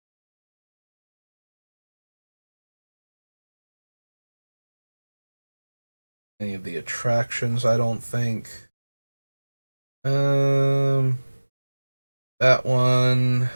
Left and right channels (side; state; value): both; inverted; correlation -1.00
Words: Any of the attractions, I don't think. Um, that one.